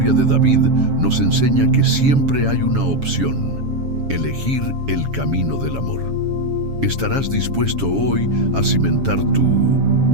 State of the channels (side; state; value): left; late; 7.2 ms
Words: de David nos enseña que siempre hay una opción: elegir el camino del amor. ¿Estarás dispuesto hoy a cimentar tu